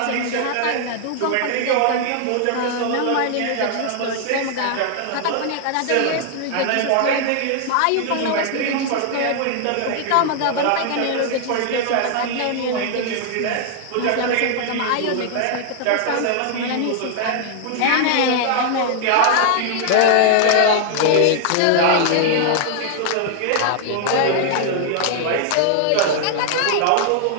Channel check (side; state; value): both; different; correlation 0.00